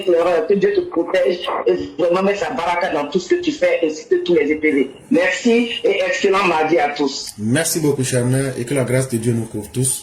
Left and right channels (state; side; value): identical; both; correlation 1.00